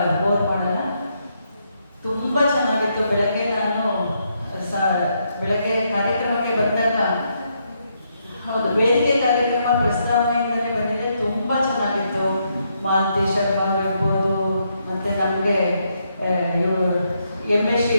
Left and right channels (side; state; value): both; inverted; correlation -0.78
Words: ಬೋರ್ ಮಾಡಲ್ಲ. ತುಂಬ ಚೆನ್ನಾಗಿತ್ತು. ಬೆಳಗ್ಗೆ ಕಾರ್ಯಕ್ರಮಕ್ಕೆ ಬಂದಾಗ, ಹೌದು, ವೇದಿಕೆ ಕಾರ್ಯಕ್ರಮ ಪ್ರಸ್ತಾವನೆಯಿಂದಲೇ ಬಂದಿದೆ. ತುಂಬ ಚೆನ್ನಾಗಿತ್ತು. ಮಾಲತಿ ಶರ್ಮಾ ಇರ್ಬೋದು, ಮತ್ತು ನಮಗೆ ಎಮ್ ಎಸ್